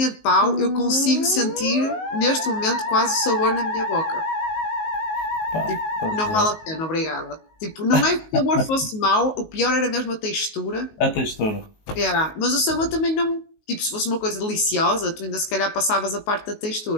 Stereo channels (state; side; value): late; right; 19 ms